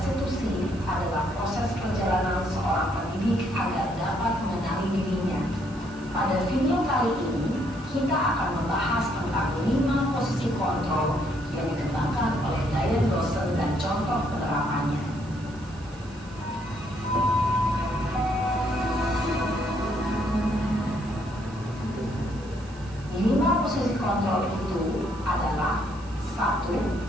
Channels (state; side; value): noise; right; hiss, 23 dB below the sound